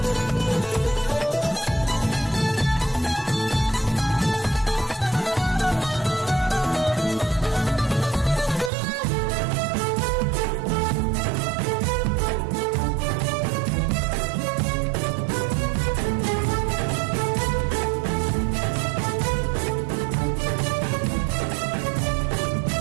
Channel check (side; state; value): left; drops out; at 8.7 s